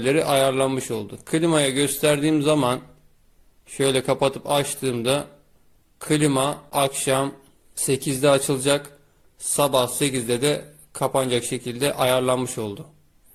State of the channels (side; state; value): both; identical; correlation 1.00